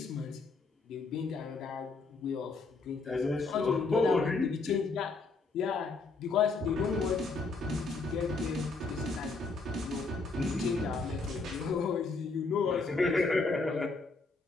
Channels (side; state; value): right; quieter; 4.0 dB